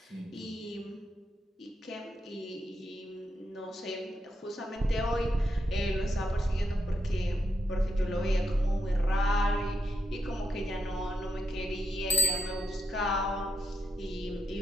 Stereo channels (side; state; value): both; normal; correlation 0.83